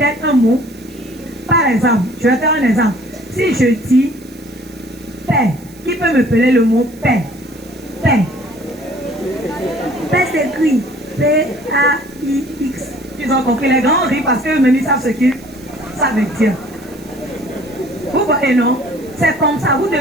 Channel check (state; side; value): noise; right; hiss, 24 dB below the sound